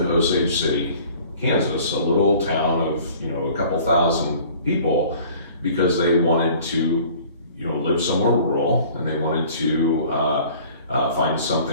Osage City, Kansas, a little town of a couple thousand people, because they wanted to live somewhere rural, and they wanted to find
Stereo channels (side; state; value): both; inverted; correlation -0.50